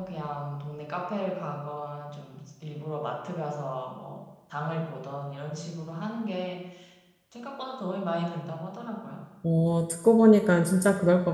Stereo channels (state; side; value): identical; both; correlation 1.00